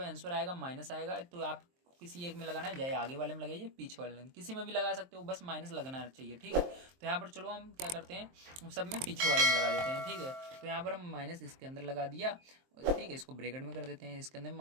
आंसर आएगा माइनस आएगा। तो आप किसी एक में लगाना है, चाहे आगे वाले में लगाइए, पीछे वाले में, किसी में भी लगा सकते हो, बस माइनस लगना चाहिए। ठीक है, तो यहाँ पर चलो हम क्या करते हैं, सब में पीछे वाले में लगा देते हैं। ठीक है, तो यहाँ पर हम माइनस इसके अंदर लगा दिया। ठीक है, इसको ब्रैकेट में कर देते हैं, इसके अंदर भी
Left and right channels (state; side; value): late; left; 23 ms